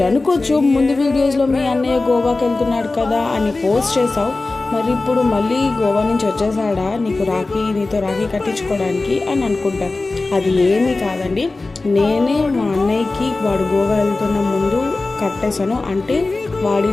అనుకోవచ్చు, ముందు వీడియోస్లో మీ అన్నయ్య గోవాకి వెళ్తున్నాడు కదా అని పోస్ట్ చేసావు, మరి ఇప్పుడు మళ్ళీ గోవా నుంచి వచ్చేసాడా నీతో రాఖీ కట్టించుకోవడానికి అని అనుకుంటారు. అది ఏమీ కాదండి, నేనే మా అన్నయ్యకి వాడు గోవా వెళ్తున్న ముందు కట్టేశాను. అంటే వాడి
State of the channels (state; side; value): quieter; right; 3.4 dB